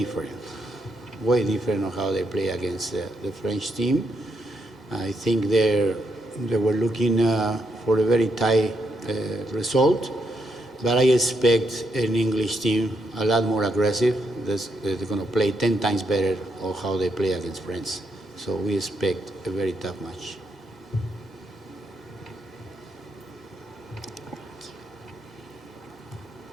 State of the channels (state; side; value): normal; both; correlation 0.79